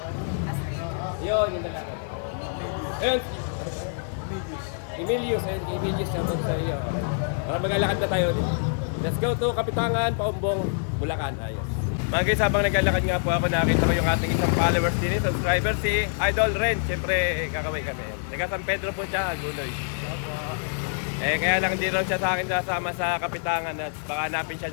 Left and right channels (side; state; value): right; silent; digital silence